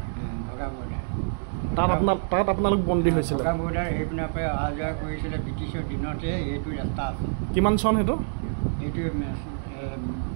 ভগা বৰ্ডাৰ তাত আপোনালোক বন্দী হৈছিলে? ভগা বৰ্ডাৰ সেইপিনৰ পৰা অহা যোৱা কৰিছিলে ব্ৰিটিছৰ দিনতে। এইটো ৰাস্তা আছে। কিমান চন সেইটো? এইটো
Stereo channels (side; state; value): left; silent; digital silence